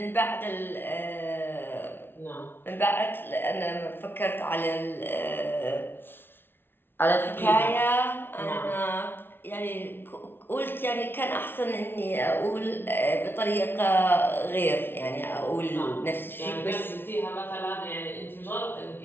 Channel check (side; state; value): right; late; 0.11 ms